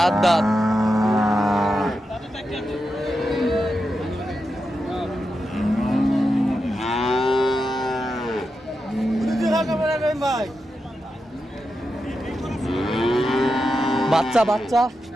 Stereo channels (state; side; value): normal; both; correlation 0.88